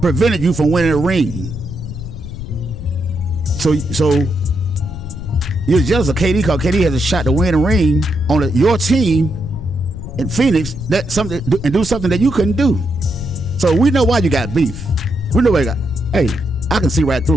prevented you from winning a ring. So you're jealous of KD because KD has a shot to win a ring on your team in Phoenix, and do something that you couldn't do. So we know why you got beef. We know why you got. Hey, I can see right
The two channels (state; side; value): noise; left; rumble, 10 dB below the sound